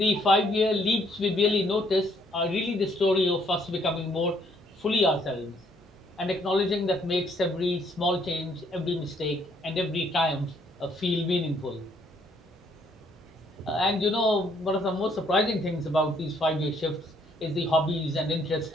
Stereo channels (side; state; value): both; normal; correlation 0.67